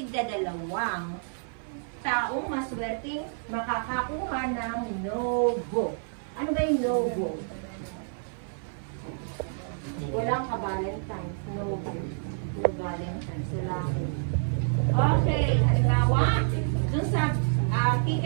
taong maswerteng makakakuha ng no-go. Ano ba yung no-go? Walang ka-Valentine's. No-go. No-Valentine's. Wala. Okay, halimbawa, dun sa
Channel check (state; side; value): silent; left; 57 dB below the other